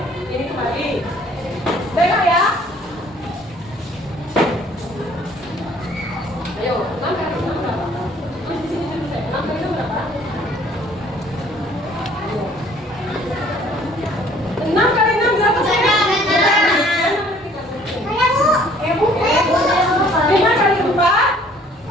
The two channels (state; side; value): normal; both; correlation 0.57